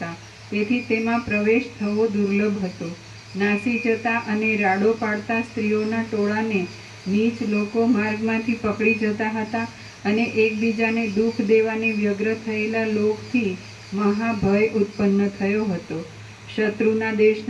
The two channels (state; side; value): identical; both; correlation 1.00